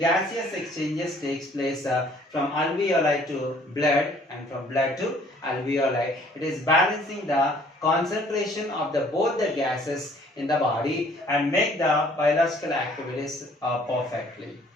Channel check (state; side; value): normal; both; correlation 0.58